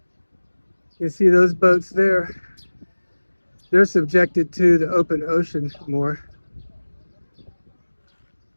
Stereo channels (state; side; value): inverted; both; correlation -1.00